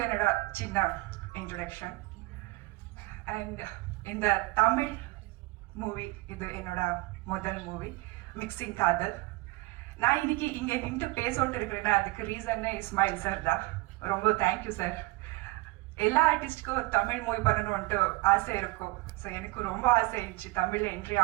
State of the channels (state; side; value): quieter; left; 21.7 dB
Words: என்னோட சின்ன இன்ட்ரடக்ஷன். அண்ட் இந்த தமிழ் மூவி இது என்னோட முதல் மூவி, மிக்சிங் காதல். நான் இன்னைக்கு இங்கே நின்று பேசோட்டு இருக்கிறேன்னா அதுக்கு ரீசன்னே இஸ்மாயில் சார் தான். ரொம்ப தேங்க்யூ சார். எல்லா ஆர்டிஸ்ட்க்கும் தமிழ் மூவி பண்ணணும்ன்ட்டு ஆசை இருக்கும். ஸோ எனக்கு ரொம்ப ஆசை இருந்துச்சு தமிழில் என்ட்ரி